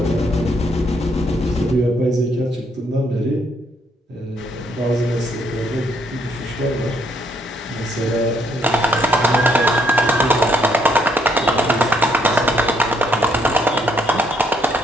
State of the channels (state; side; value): normal; both; correlation 0.71